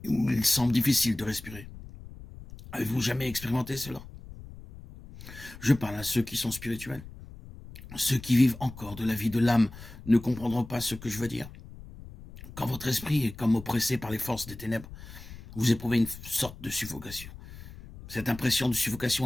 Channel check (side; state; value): left; noise; rumble, 16 dB below the sound